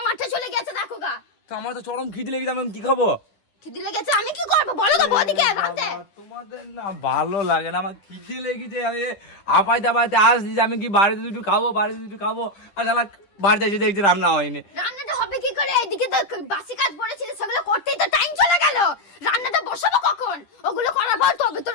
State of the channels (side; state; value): right; late; 10 ms